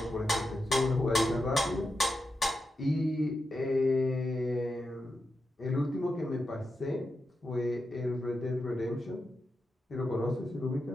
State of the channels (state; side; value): normal; both; correlation 0.88